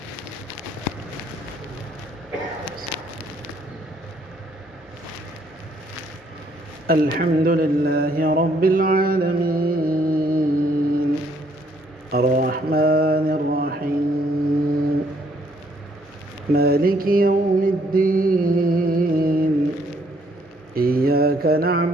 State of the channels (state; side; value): normal; both; correlation 0.67